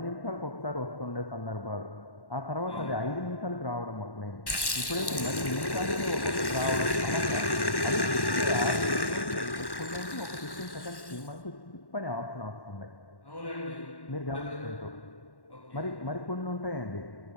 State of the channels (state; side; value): late; right; 1.1 ms